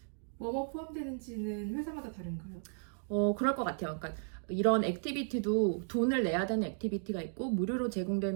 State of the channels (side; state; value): left; silent; digital silence